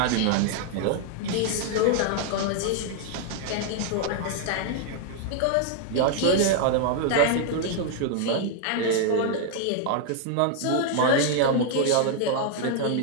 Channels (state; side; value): different; both; correlation 0.00